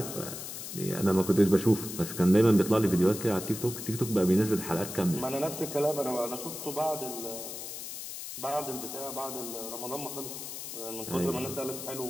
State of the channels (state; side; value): noise; left; hiss, 8 dB below the sound